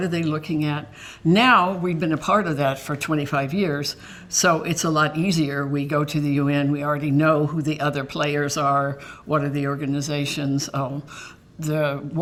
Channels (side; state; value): both; identical; correlation 1.00